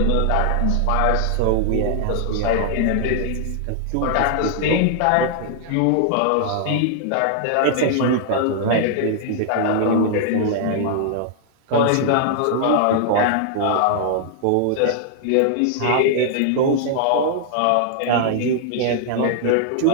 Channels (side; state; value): both; different; correlation -0.01